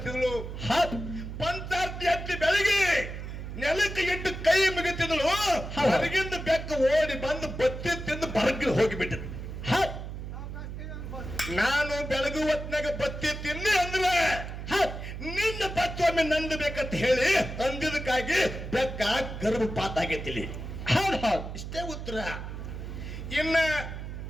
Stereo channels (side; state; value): right; noise; hum, 8 dB below the sound